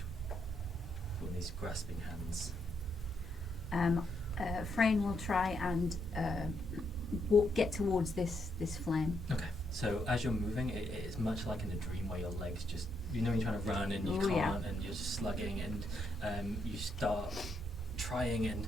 with these grasping hands. Frayne will try and get towards this flame. Okay, so as you're moving, it is much like in a dream where your legs just, you're trying to run and you can't, and you're just slugging, and you start trying, and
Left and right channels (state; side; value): normal; both; correlation 0.78